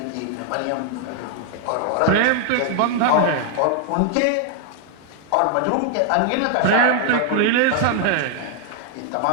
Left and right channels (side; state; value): both; different; correlation 0.00